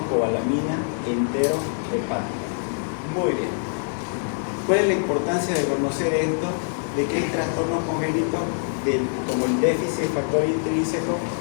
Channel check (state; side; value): silent; right; digital silence